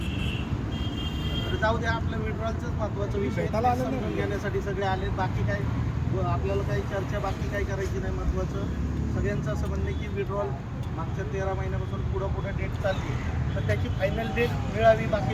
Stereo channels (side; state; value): both; identical; correlation 1.00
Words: तर जाऊ द्या, आपलं विड्रॉलच महत्वाचा विषय आहे. समजून घेण्यासाठी सगळे आले. बाकी काय आपल्याला काही चर्चा बाकी काही करायची नाही. महत्वाचं सगळ्यांचं असं म्हणणं की विड्रॉल मागच्या 13 महिन्यापासून पुढे डेट चालली, तर त्याची फायनल डेट मिळावी. बाकी